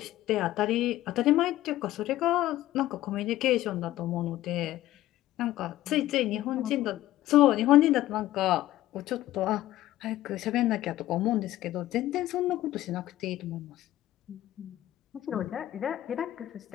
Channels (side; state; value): right; quieter; 14.8 dB